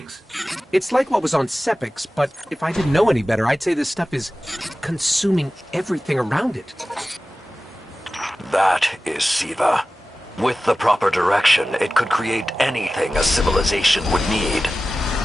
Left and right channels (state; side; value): normal; both; correlation 0.96